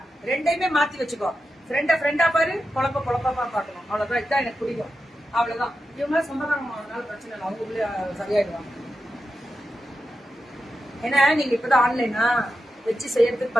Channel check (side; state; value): both; normal; correlation 0.90